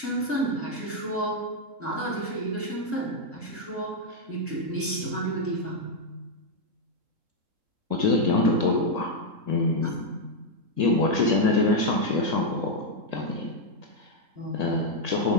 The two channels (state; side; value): late; left; 3.7 ms